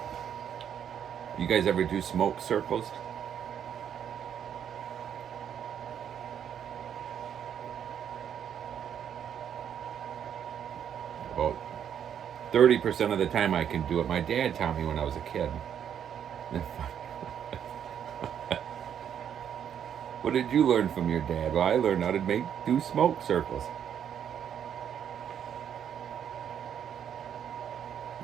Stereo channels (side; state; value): left; quieter; 8.9 dB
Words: You guys ever do smoke circles? About 30% of the time I can do it. My dad taught me when I was a kid. What did you learn from your dad? Well, I learned how to do smoke circles.